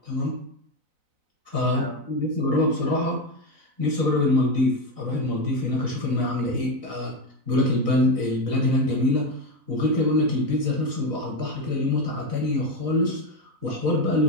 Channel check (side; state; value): left; late; 4.0 ms